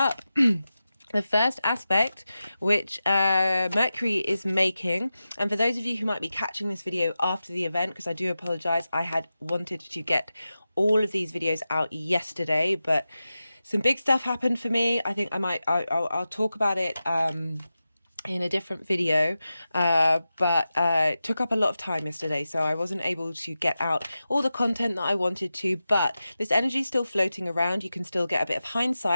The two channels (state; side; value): inverted; both; correlation -0.93